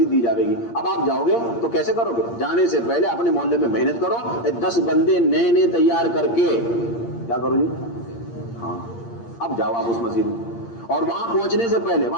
دی جائے گی. اب آپ جاؤ گے تو کیسے کرو گے؟ جانے سے پہلے اپنے محلے میں محنت کرو، 10 بندے نئے تیار کر کے کیا کرو جی؟ ہاں اب جاؤ آپ اس مسجد میں، اور وہاں پہنچنے سے پہلے،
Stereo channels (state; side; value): late; right; 8.6 ms